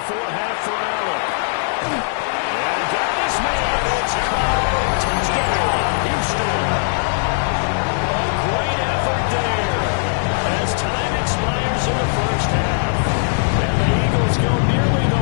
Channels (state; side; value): silent; right; digital silence